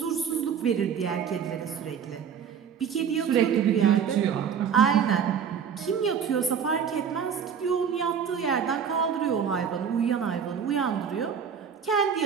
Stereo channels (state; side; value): quieter; left; 7.4 dB